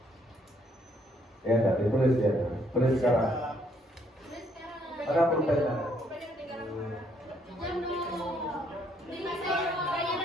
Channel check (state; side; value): normal; both; correlation 0.69